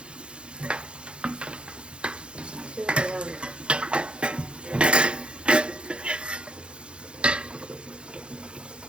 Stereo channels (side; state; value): left; late; 0.055 ms